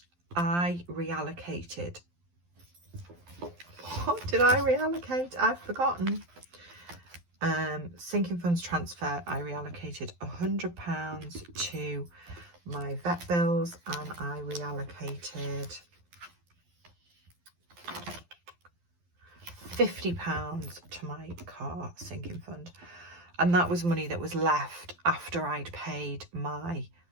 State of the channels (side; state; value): left; late; 12 ms